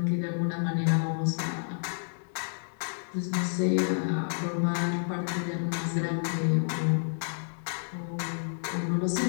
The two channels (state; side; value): silent; right; digital silence